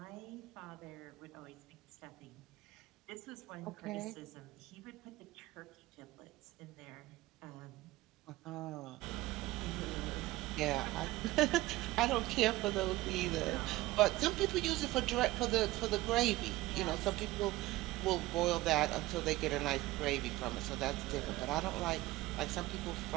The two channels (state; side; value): quieter; left; 18.0 dB